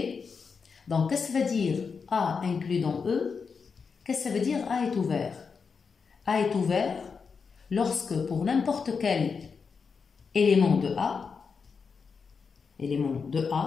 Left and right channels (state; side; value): quieter; right; 5.5 dB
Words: Donc, qu'est-ce que ça veut dire A inclus dans E? Qu'est-ce que ça veut dire A est ouvert? A est ouvert lorsque pour n'importe quel élément de